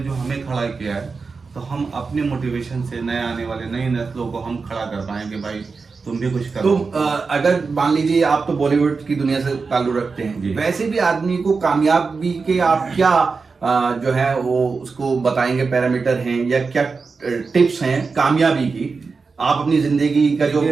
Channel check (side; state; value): left; quieter; 4.6 dB